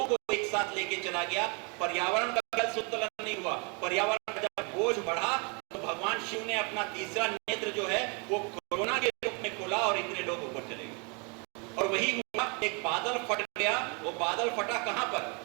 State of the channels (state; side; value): quieter; left; 33.7 dB